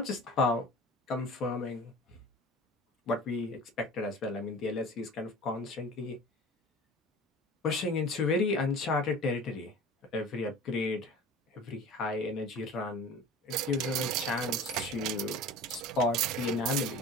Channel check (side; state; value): both; normal; correlation 0.40